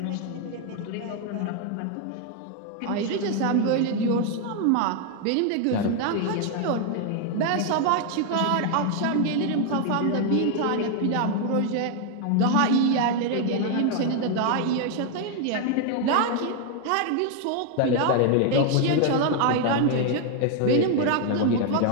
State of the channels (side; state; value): both; different; correlation 0.01